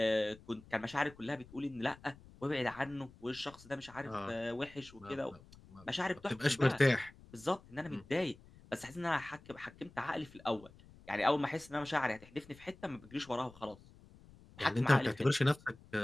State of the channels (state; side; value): noise; left; rumble, 22 dB below the sound